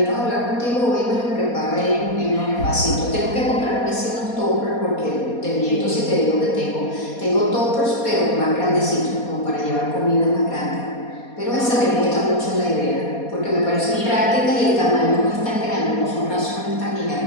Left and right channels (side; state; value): right; late; 4.2 ms